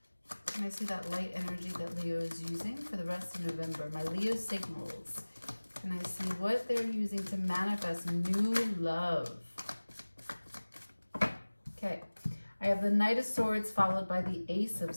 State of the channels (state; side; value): inverted; both; correlation -1.00